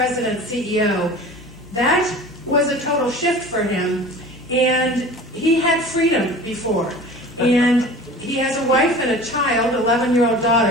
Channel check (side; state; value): both; normal; correlation 0.40